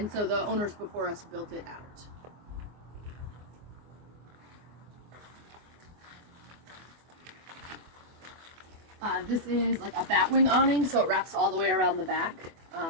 so the owners before us built it out. This is like a Batwing awning, so it wraps all the way around the back.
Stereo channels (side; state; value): left; late; 24 ms